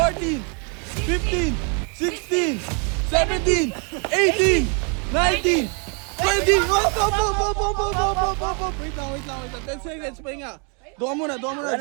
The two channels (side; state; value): left; quieter; 37.3 dB